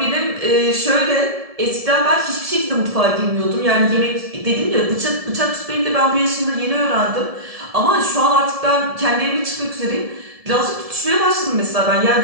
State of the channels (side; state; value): left; late; 1.7 ms